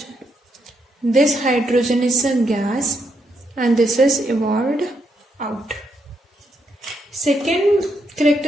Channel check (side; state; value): both; normal; correlation 0.78